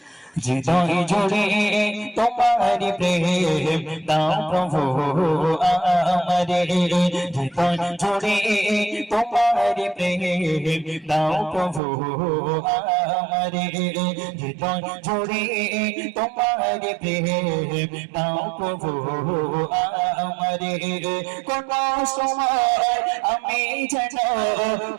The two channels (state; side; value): drops out; left; at 11.8 s